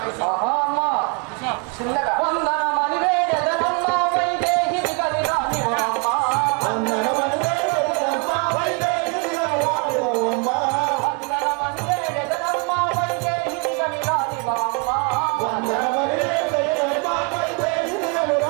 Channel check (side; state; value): left; quieter; 34.1 dB